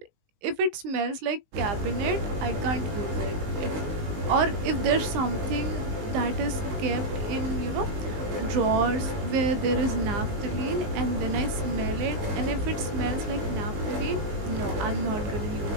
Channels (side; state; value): left; late; 19 ms